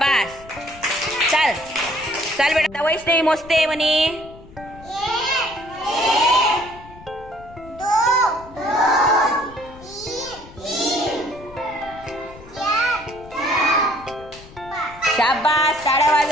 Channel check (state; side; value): noise; left; rumble, 20 dB below the sound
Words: चल चल बेटा, वैष्णवी मोजते म्हणे. शाबास, टाळ्या